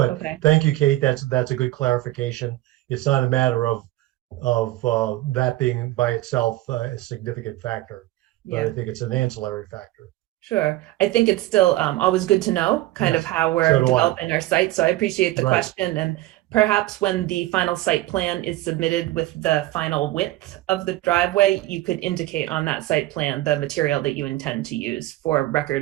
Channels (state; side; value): quieter; left; 16.8 dB